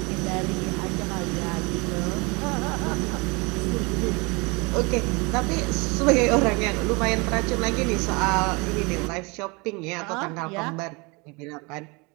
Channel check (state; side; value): quieter; left; 27.9 dB